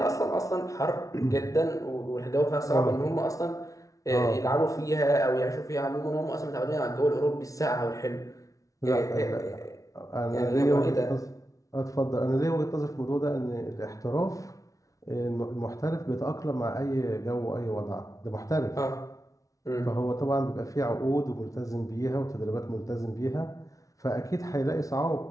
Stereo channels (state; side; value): late; right; 0.17 ms